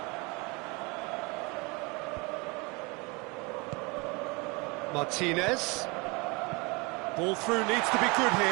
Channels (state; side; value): quieter; left; 27.8 dB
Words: Martinez. Ball through needs to be good